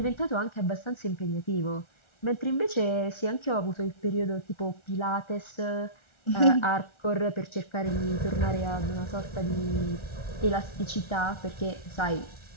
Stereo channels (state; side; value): late; right; 1.4 ms